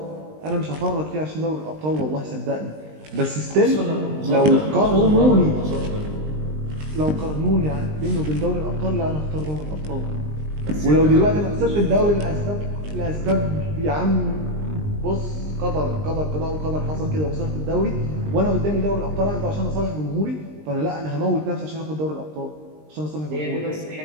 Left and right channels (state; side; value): late; left; 20 ms